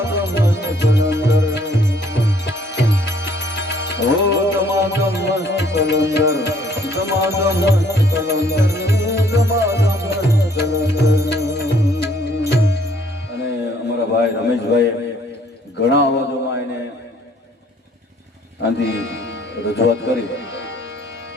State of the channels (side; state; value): both; normal; correlation 0.62